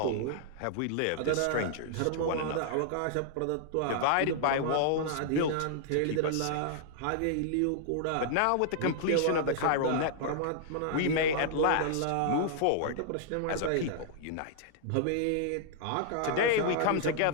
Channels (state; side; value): different; both; correlation -0.01